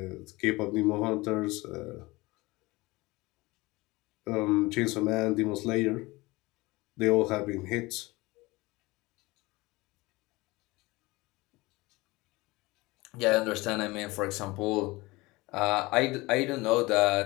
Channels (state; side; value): quieter; right; 21.9 dB